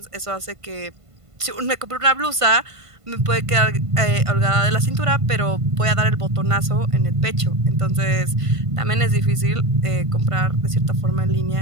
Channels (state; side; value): late; left; 1.5 ms